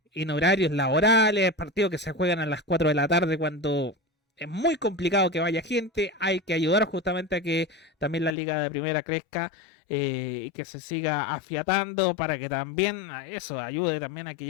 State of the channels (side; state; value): right; drops out; at 8.3 s